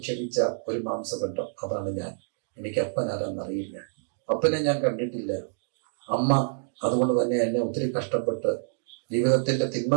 ഒരു മാംസബന്ധം, അതാണ് ഞാൻ. എനിക്ക് അപ്പൻ ആരെന്നറിയില്ല, അപ്പനെ ഞാൻ കണ്ടിട്ടില്ല. അമ്മ അതുകൊണ്ട് തന്നെ എന്നെ ഒത്തിരി കഷ്ടപ്പെട്ട് ജീവിതത്തിന്റെ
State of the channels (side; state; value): left; silent; digital silence